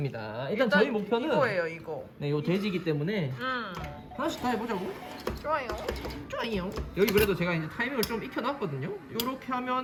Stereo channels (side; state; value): both; identical; correlation 1.00